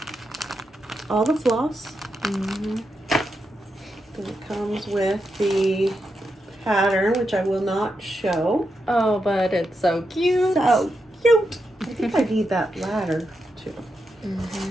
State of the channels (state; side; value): normal; both; correlation 0.85